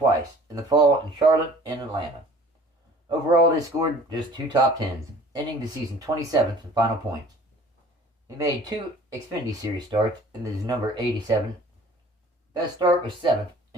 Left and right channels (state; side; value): normal; both; correlation 0.49